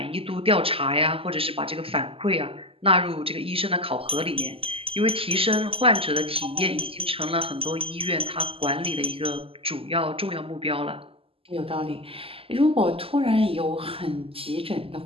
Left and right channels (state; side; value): late; left; 0.27 ms